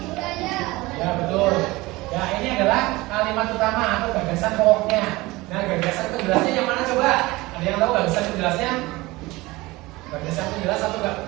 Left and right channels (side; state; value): left; quieter; 20.9 dB